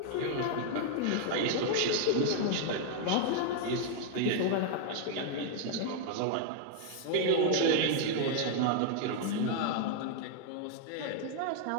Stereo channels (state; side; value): different; both; correlation 0.00